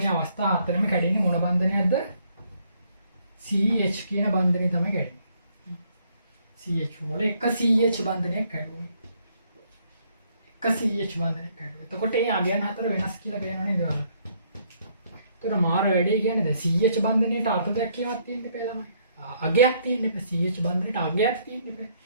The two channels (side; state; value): both; inverted; correlation -0.68